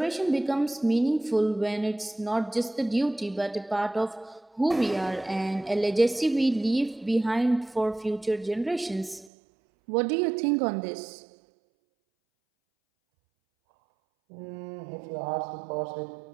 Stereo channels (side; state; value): left; drops out; at 9.3 s